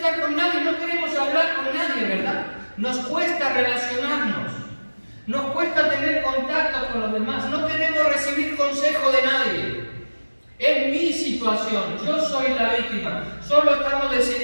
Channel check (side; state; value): both; inverted; correlation -1.00